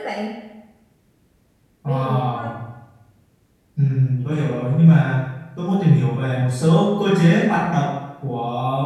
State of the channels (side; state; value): both; identical; correlation 1.00